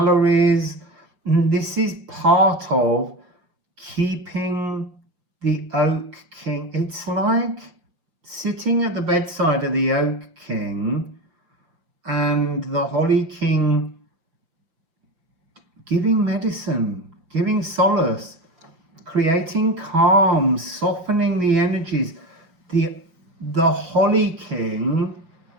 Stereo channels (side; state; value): left; late; 5.9 ms